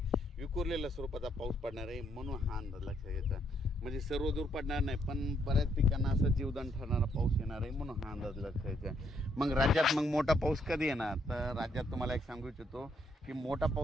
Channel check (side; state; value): both; normal; correlation 0.73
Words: विखुरलेल्या स्वरूपाचा पाऊस पडणार आहे, म्हणून हा अंदाज लक्षात घ्यायचा। म्हणजे सर्व दूर पडणार नाही, पण बऱ्याच पिकांना असं जीवदान ठरणारा पाऊस येणार आहे, म्हणून हा अंदाज लक्षात घ्यायचा। मग राज्यात मोठा पाऊस कधी येणार, तर राज्यात तुम्हाला एक सांगू इच्छितो की मोठा